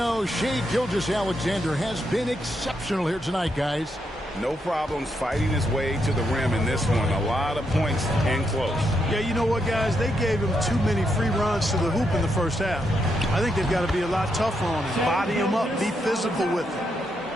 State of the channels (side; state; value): both; normal; correlation 0.80